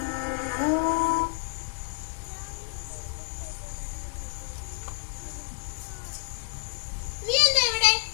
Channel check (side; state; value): right; silent; digital silence